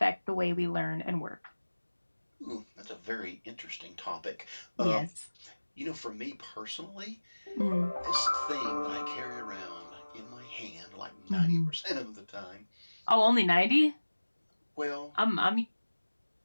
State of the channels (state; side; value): inverted; both; correlation -1.00